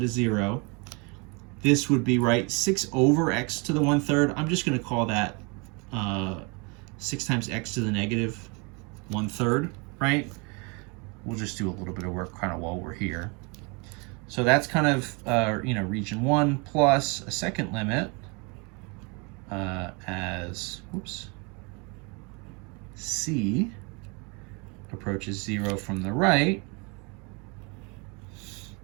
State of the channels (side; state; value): left; quieter; 31.1 dB